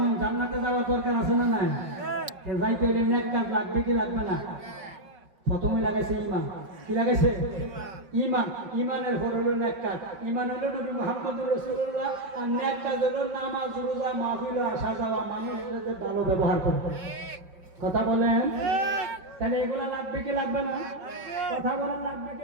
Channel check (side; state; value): left; late; 5.0 ms